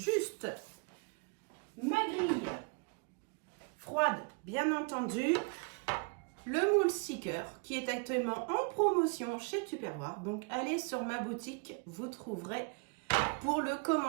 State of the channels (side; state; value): left; quieter; 34.8 dB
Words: ma grille froide, bien entendu. Le moule sticker qui est actuellement en promotion chez Tupperware. Donc, allez sur ma boutique, vous trouverez pour le